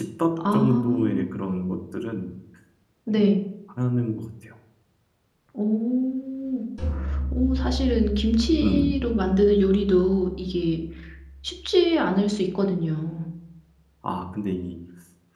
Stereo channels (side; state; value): both; identical; correlation 1.00